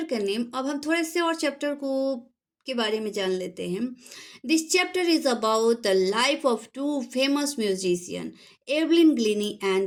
का नेम। अब हम थोड़े से और चैप्टर को के बारे में जान लेते हैं। This chapter is about the life of two famous musician, Evelyn Glennie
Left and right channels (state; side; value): identical; both; correlation 1.00